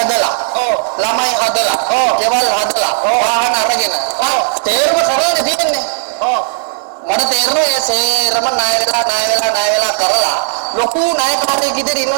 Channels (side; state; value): left; silent; digital silence